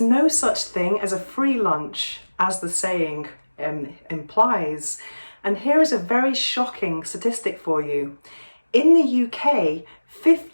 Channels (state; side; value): inverted; both; correlation -1.00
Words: no such thing as a free lunch, as the saying implies. And here is a very shocking statistic for you. In the UK,